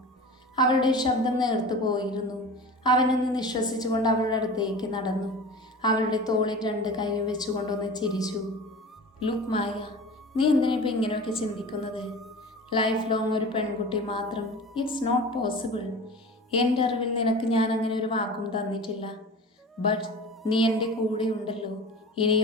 അവളുടെ ശബ്ദം നേർത്തു പോയിരുന്നു. അവനൊന്ന് നിശ്വസിച്ചുകൊണ്ട് അവളുടെ അടുത്തേക്ക് നടന്നു. അവളുടെ തോളിൽ രണ്ട് കൈയും വെച്ചുകൊണ്ടൊന്ന് ചിരിച്ചു. ലുക്ക് മായ, നീ എന്തിനിപ്പോൾ ഇങ്ങനെയൊക്കെ ചിന്തിക്കുന്നത്? ലൈഫ് ലോങ് ഒരു പെൺകുട്ടി മാത്രം, ഇറ്റ്സ് നോട്ട് പോസിബിൾ. എൻ്റെ അറിവിൽ നിനക്ക് ഞാൻ അങ്ങനെ ഒരു വാക്കും തന്നിട്ടില്ല. ബട്ട് നീ എൻ്റെ കൂടെ ഉണ്ടല്ലോ,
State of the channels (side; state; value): both; normal; correlation 0.35